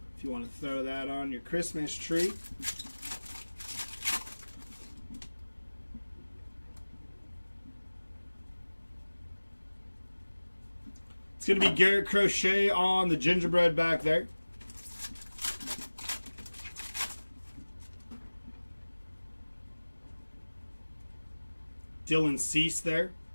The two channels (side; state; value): both; inverted; correlation -1.00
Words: If you want to throw that on your Christmas tree. It's going to be Garrett Crochet on the gingerbread back there. Dylan Cease there.